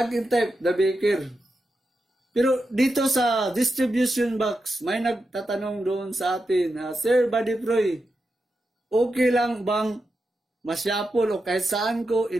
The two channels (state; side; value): normal; both; correlation 0.88